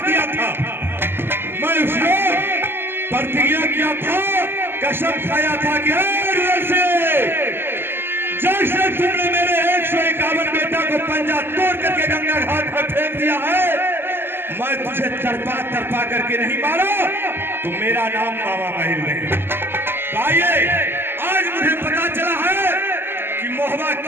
दिया था, मैं उसको प्रतिज्ञा किया था, कसम खाया था कि रुदल सिंह, जैसे तुमने मेरे 151 बेटा को पंजा तोड़ करके गंगा घाट पर फेंक दिया है, मैं तुझे तड़पा तड़पा करके नहीं मारा तो मेरा नाम मामा माही नहीं। आइए, आज मुझे पता चला है कि मोहबा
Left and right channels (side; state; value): left; late; 0.11 ms